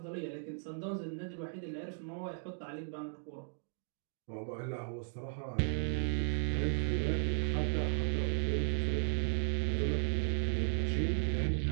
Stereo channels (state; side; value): silent; left; digital silence